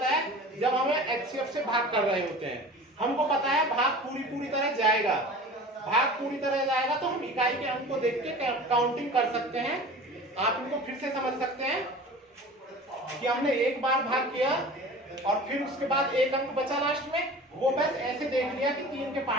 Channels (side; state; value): both; normal; correlation 0.39